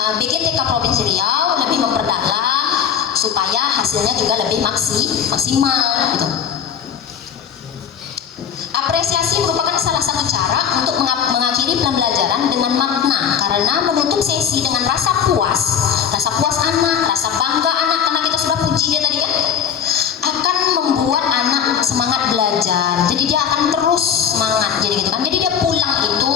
BGTK Provinsi Riau lebih memperdalam supaya hasilnya juga lebih maksimal gitu. Apresiasi merupakan salah satu cara untuk mengakhiri pembelajaran dengan makna, karena menutup sesi dengan rasa puas anak, rasa bangga anak karena kita sudah puji dia tadi kan, akan membuat anak semangat belajar. Jadi dia akan terus semangat jadi gitu kan. Jadi dia pulang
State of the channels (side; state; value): right; quieter; 8.0 dB